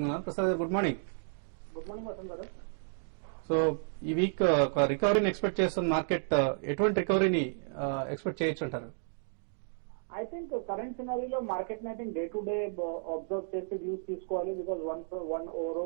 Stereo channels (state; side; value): silent; left; digital silence